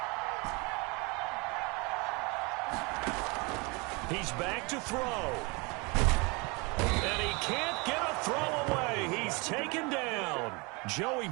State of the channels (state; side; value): quieter; left; 28.6 dB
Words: He's back to throw. And he can't get a throw away. He's taken down. Joey